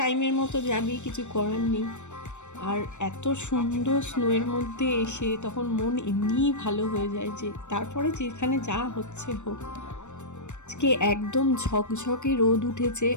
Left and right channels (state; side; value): late; right; 0.84 ms